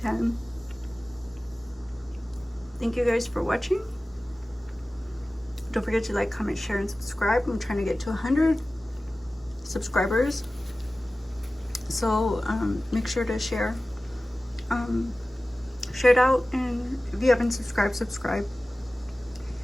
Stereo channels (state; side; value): normal; both; correlation 0.97